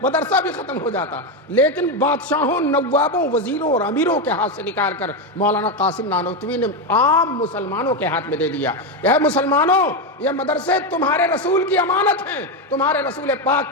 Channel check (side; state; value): both; normal; correlation 0.10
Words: مدرسہ بھی ختم ہو جاتا۔ لیکن بادشاہوں، نوابوں، وزیروں اور امیروں کے ہاتھ سے نکال کر مولانا قاسم نانوتوی نے عام مسلمانوں کے ہاتھ میں دے دیا۔ اے مسلمانوں، یہ مدرسے تمہارے رسول کی امانت ہیں، تمہارے رسول